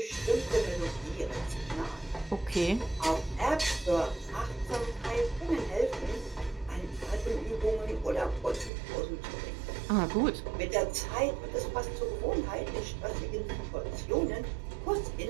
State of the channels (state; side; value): drops out; left; at 8.7 s